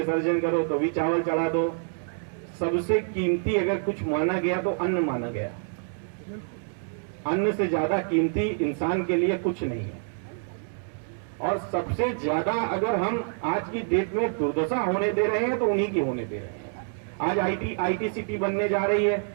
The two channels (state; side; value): silent; left; 60 dB below the other